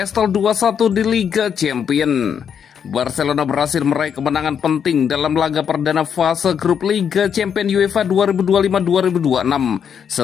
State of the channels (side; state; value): right; quieter; 7.7 dB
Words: 2-1 di Liga Champions. Barcelona berhasil meraih kemenangan penting dalam laga perdana fase grup Liga Champions UEFA 2025-2026